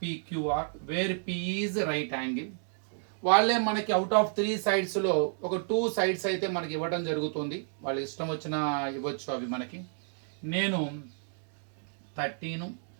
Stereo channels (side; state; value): left; silent; digital silence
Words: PQR where P is right angle. వాళ్ళే మనకి అవుట్ ఆఫ్ 3 సైడ్స్లో ఒక 2 సైడ్స్ అయితే మనకి ఇవ్వడం జరుగుతుంది. వాళ్ళు ఇష్టం వచ్చిన ఇవ్వచ్చు అవి మనకి. నేను 13,